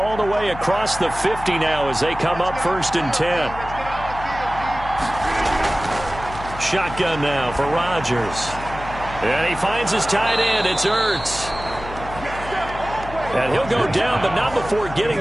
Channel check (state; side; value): noise; left; hum, 12 dB below the sound